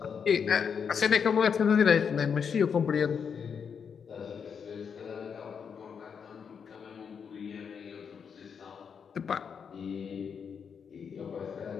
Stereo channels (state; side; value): quieter; right; 6.7 dB